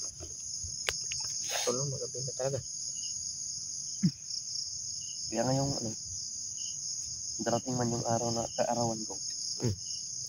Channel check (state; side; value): identical; both; correlation 1.00